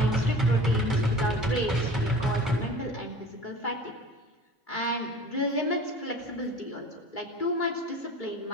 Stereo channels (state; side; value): normal; both; correlation 0.41